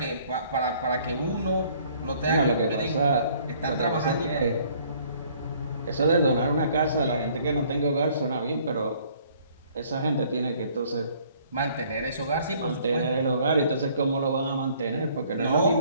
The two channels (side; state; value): both; inverted; correlation -0.60